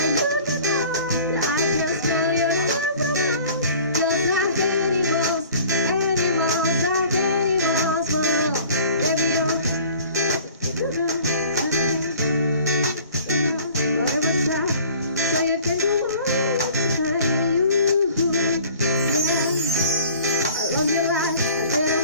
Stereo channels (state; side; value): inverted; both; correlation -0.49